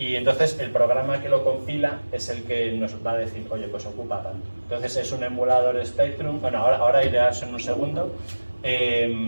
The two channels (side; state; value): both; inverted; correlation -1.00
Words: entonces el programa que lo compila es el que nos va a decir, oye, pues ocupa tanto. Entonces es un emulador Spectrum, ahora iré a eso en un segundo.